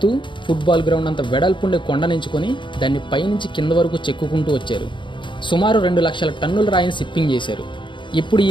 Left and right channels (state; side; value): late; right; 0.23 ms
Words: ఫుట్బాల్ గ్రౌండ్ అంత వెడల్పుండే కొండనించుకొని దాన్ని పైనుంచి కింద వరకు చెక్కుకుంటూ వచ్చారు. సుమారు 2 లక్షల టన్నుల రాయిని షిప్పింగ్ చేశారు. ఇప్పుడు ఈ